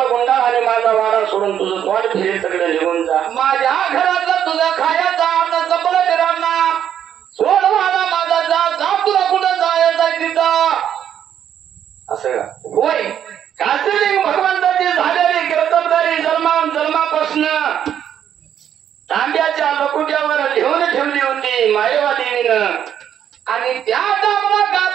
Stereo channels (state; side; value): quieter; left; 9.6 dB